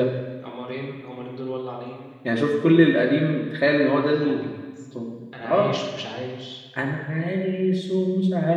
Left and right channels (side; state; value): both; identical; correlation 1.00